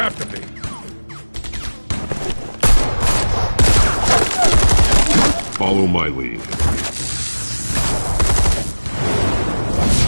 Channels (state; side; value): inverted; both; correlation -1.00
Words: to be. Follow my lead.